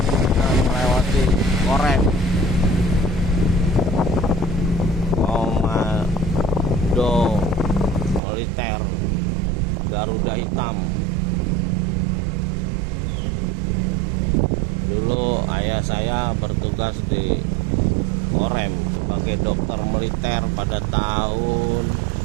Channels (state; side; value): drops out; left; at 8.2 s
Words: melewati Korem, Komando Militer Garuda Hitam. Dulu ayah saya bertugas di Korem sebagai dokter militer pada tahun